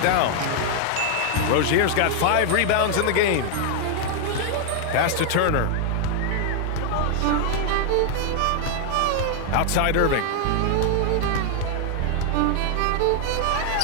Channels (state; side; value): different; both; correlation 0.00